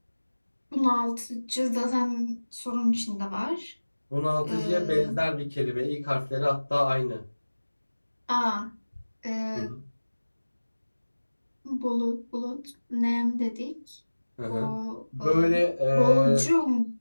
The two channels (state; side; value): inverted; both; correlation -1.00